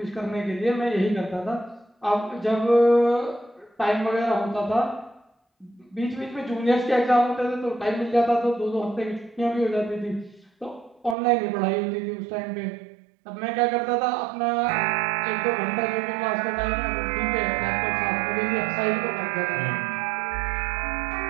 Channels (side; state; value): left; drops out; at 11.2 s